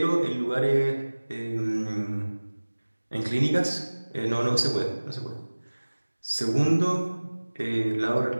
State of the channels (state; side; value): inverted; both; correlation -1.00